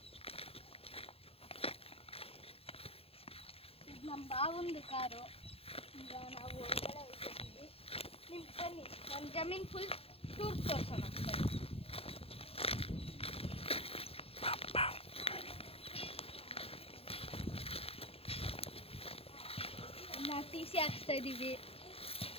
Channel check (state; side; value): late; right; 0.28 ms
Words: ಇದು ನಮ್ಮ ಬಾವಂದು ಕಾರು. ಈಗ ನಾವು ಒಳಗಡೆ ಹೋಗ್ತಿದ್ದೀವಿ. ನಿಮ್ಗೆ ಬನ್ನಿ ನನ್ನ ಜಮೀನು ಫುಲ್ ಟೂರ್ ತೋರಿಸೋಣ. ನಾವು ಟಿ ಸಿ ಹಾಕ್ಸ್ತಾ ಇದ್ದೀವಿ.